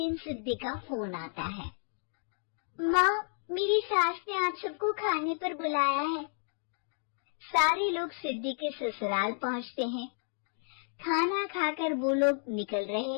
सिद्धि का फोन आता है। माँ, मेरी सास ने आप सबको खाने पर बुलाया है। सारे लोग सिद्धि के ससुराल पहुँचते हैं। खाना खाकर वो लोग निकल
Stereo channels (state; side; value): silent; right; digital silence